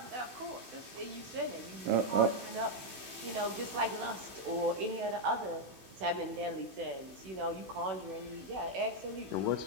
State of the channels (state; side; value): late; left; 16 ms